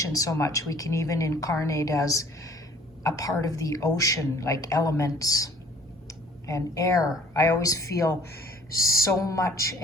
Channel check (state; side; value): normal; both; correlation 0.55